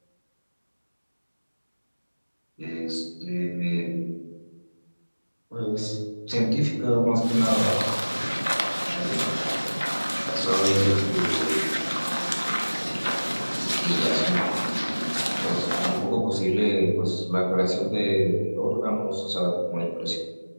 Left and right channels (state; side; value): inverted; both; correlation -1.00